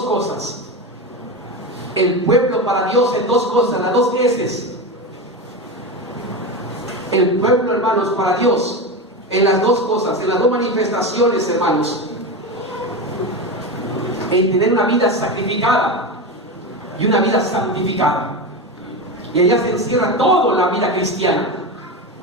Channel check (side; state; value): both; normal; correlation 0.20